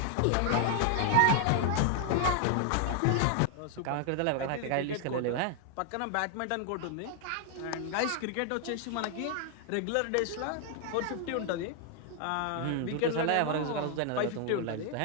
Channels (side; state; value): both; different; correlation 0.00